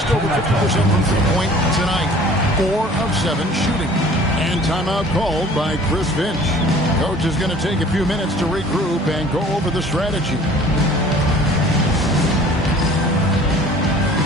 over 50% from three-point tonight. 4 of 7 shooting. And timeout called by Chris Finch. Coach is going to take a few minutes to regroup and go over the strategy.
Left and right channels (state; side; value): normal; both; correlation 0.49